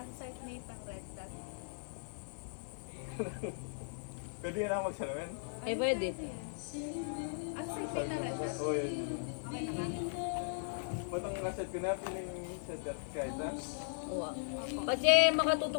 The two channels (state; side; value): silent; right; digital silence